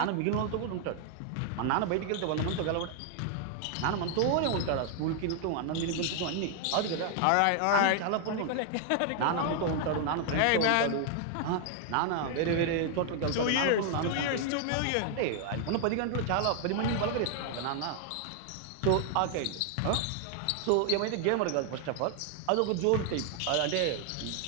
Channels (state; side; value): different; both; correlation 0.00